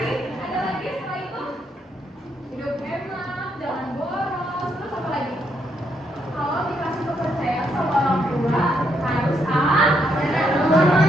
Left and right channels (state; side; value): normal; both; correlation 0.76